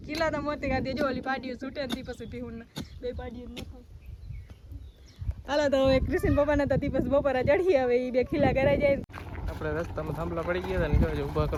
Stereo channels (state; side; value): identical; both; correlation 1.00